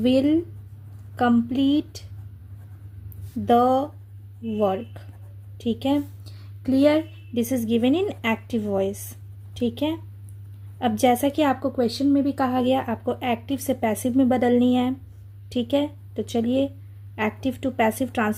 complete the work, ठीक है। Clear? This is given in active voice, ठीक है। अब जैसा कि आपको क्वेश्चन में भी कहा गया, आपको एक्टिव से पैसिव में बदलनी है, ठीक है। तो चलिए एक्टिव टू पैसिव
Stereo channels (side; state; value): both; identical; correlation 1.00